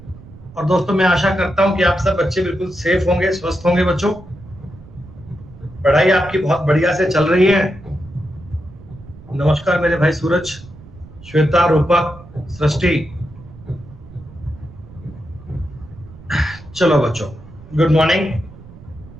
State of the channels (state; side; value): noise; right; rumble, 19 dB below the sound